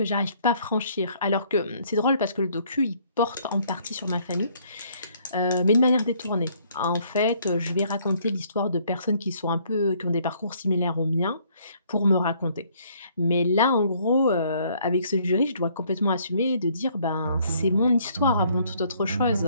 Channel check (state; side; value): inverted; both; correlation -0.64